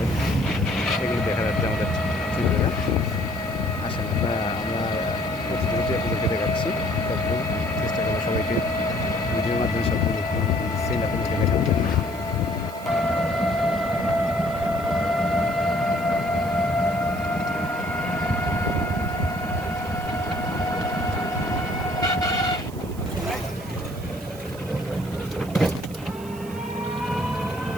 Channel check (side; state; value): right; noise; hiss, 19 dB below the sound